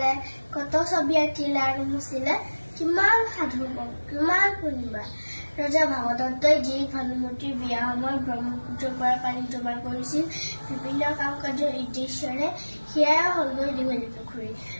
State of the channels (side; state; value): both; inverted; correlation -1.00